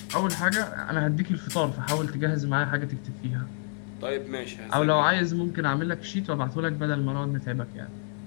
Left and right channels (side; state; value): right; silent; 59 dB below the other